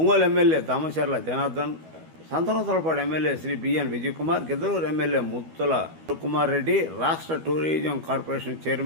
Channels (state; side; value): late; left; 12 ms